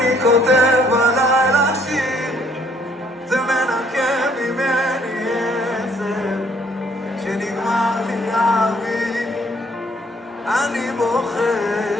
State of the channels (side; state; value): both; normal; correlation 0.64